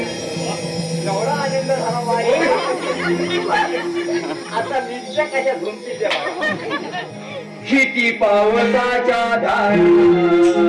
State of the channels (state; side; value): identical; both; correlation 1.00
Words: आनंद झाला वाया. आता निश्चय कशा झुंपीच्या किती पावसाच्या धार